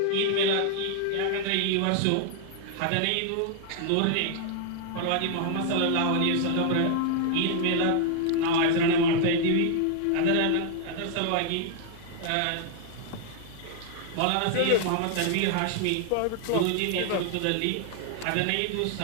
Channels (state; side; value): different; both; correlation 0.00